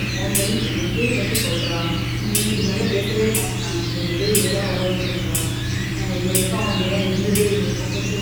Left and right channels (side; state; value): both; identical; correlation 1.00